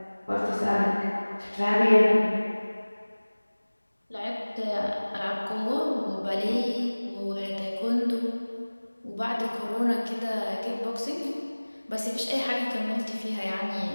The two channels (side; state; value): both; inverted; correlation -1.00